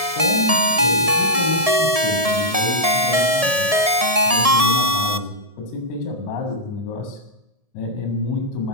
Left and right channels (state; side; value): late; left; 1.7 ms